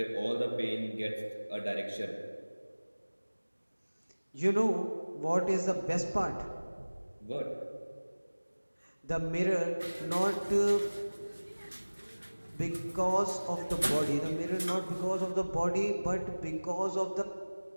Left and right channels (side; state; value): both; inverted; correlation -1.00